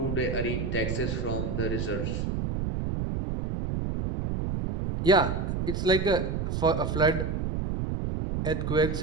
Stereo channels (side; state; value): right; noise; rumble, 2 dB below the sound